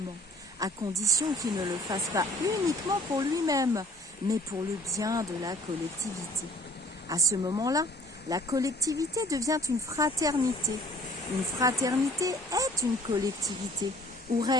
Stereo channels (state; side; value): normal; both; correlation 0.55